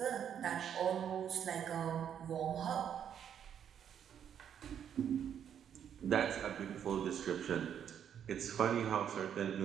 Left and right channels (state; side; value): quieter; left; 8.8 dB